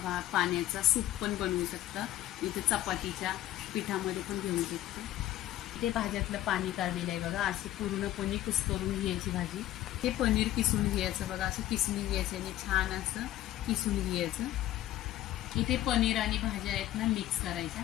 पाण्याचा सूप पण बनवू शकता। इथे चपातीच्या पिठामध्ये पण घेऊ शकता। इथे भाज्यातलं पाणी काढलेलं आहे बघा, अशी पूर्णपणे कुस्करून घ्यायची भाजी। हे पनीर किसून घ्यायचं बघा, असं किसून घ्यायचं आणि छान असं किसून घ्यायचं। इथे पनीर आणि भाज्या आहेत ना मिक्स करायच्या।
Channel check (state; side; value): quieter; right; 14.0 dB